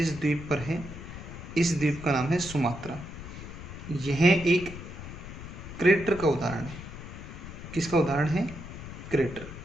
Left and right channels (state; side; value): noise; left; rumble, 11 dB below the sound